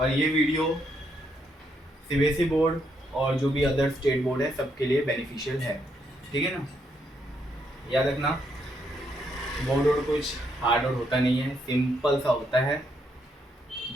ये वीडियो सीबीएसई बोर्ड और जो भी अदर स्टेट बोर्ड है सबके लिए बेनिफिशियल है, ठीक है ना। याद रखना बोर्ड और कुछ हार्ड और होता नहीं है, सिंपल सा होता है,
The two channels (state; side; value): normal; both; correlation 0.76